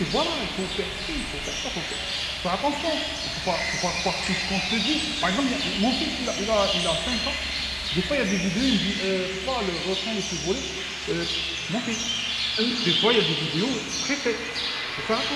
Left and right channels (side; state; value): both; identical; correlation 1.00